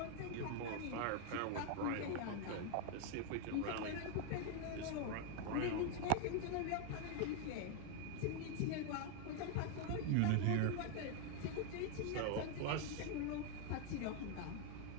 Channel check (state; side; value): different; both; correlation 0.00